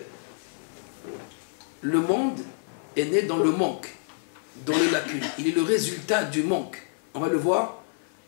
Le monde est né dans le manque, dans les lacunes. Il est le résultat du manque. On va le voir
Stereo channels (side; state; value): right; silent; 60 dB below the other